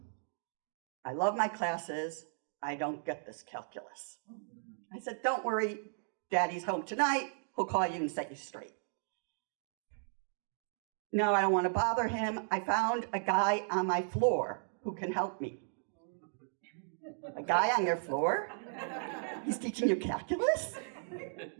I love my classes. I don't get this calculus. I said, don't worry, Daddy's home tonight. He'll call you and set you straight. No, I don't want to bother him. I found a guy on my floor who can help me. A guy on your floor? He's teaching you calculus?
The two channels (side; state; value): left; silent; digital silence